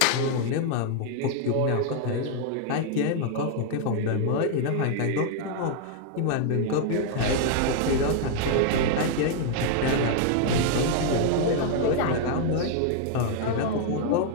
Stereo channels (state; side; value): different; both; correlation 0.00